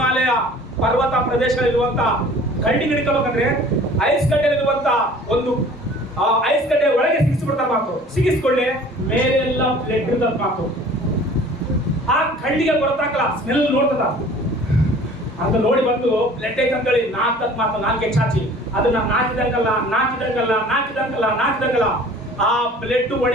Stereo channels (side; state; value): both; normal; correlation 0.48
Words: ಪರ್ವತ ಪ್ರದೇಶಗಳಿರುವಂತ ಕಳ್ಳಿ ಹಿಡ್ಕೋಬೇಕಂದ್ರೆ ಐಸ್ ಗಡ್ಡೆಲಿರುವಂತ ಒಂದು ಐಸ್ ಗಡ್ಡೆ ಒಳಗೆ ಸಿಗಿಸ್ಬಿಡ್ತಾರೆ ಮಾತು. ಸಿಗಿಸ್ಕೊಳ್ಳಿ ಮೇಲೆಲ್ಲ ಬ್ಲಡ್ ಇರ್ತದ ಮಾತು. ಆ ಕಳ್ಳಿಗೆ ಗೊತ್ತಾಗಲ್ಲ, ಸ್ಮೆಲ್ ನೋಡ್ತದ ಅಂತ ನೋಡಿ ಬಂದು ಬ್ಲಡ್ ಐತಂತೇಳಿ ನಾಲ್ಕತ್ ಮಾತು, ನಾಲ್ಕೆ ಚಾಚಿ ಅದನ್ನ ನಾಚಿದಂಗಲ್ಲ ಆ ಬ್ಲಡ್